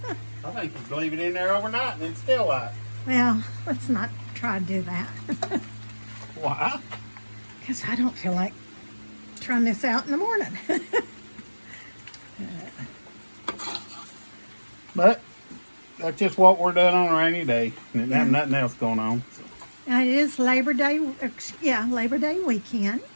I think you can leave it in there overnight and it's still light. Well, let's not try to do that. Why? Because I don't feel like trying this out in the morning. But that's just what we're doing on a rainy day. Didn't have nothing else going on. So. Now, it is Labor Day, Labor Day weekend.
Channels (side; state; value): both; inverted; correlation -1.00